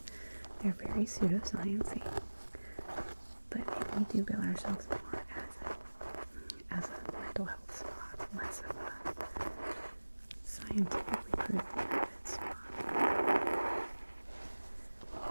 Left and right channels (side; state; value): both; inverted; correlation -1.00